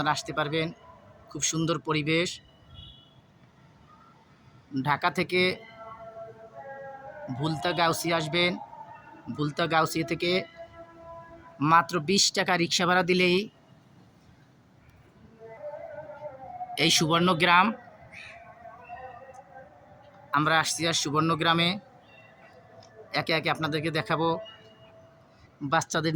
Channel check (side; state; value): both; identical; correlation 1.00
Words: আসতে পারবেন। খুব সুন্দর পরিবেশ। ঢাকা থেকে ভুলতা গাউসিয়া আসবেন। ভুলতা গাউসিয়া থেকে মাত্র 20 টাকা রিক্সা ভাড়া দিলেই এই সুবর্ণগ্রাম। আমরা আসছি আর সুবর্ণগ্রামে একে একে আপনাদেরকে দেখাবো। বাচ্চাদের